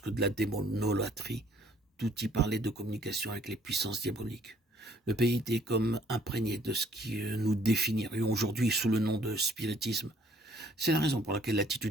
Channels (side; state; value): both; normal; correlation 0.61